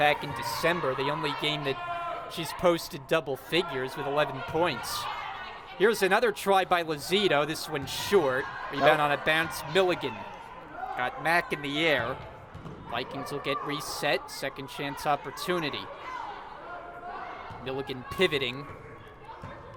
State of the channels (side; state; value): both; identical; correlation 1.00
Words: in December, the only game that she's posted double figures with 11 points. Here's another try by Lazito, this one short. Rebound on a bounce, Milligan. Got Mack in the air. Vikings will get reset, second chance opportunity. Milligan pivoting.